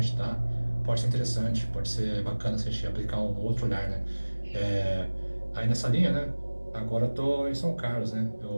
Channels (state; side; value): inverted; both; correlation -1.00